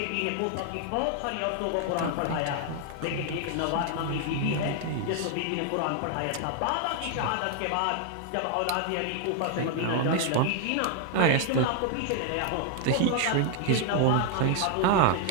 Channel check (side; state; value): both; different; correlation 0.00